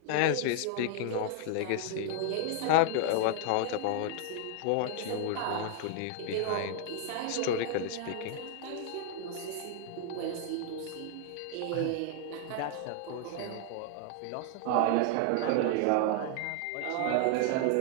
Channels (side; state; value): both; different; correlation 0.00